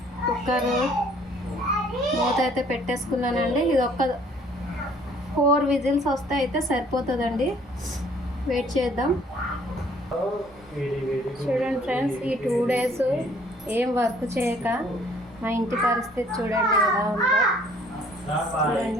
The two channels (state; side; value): normal; both; correlation 0.58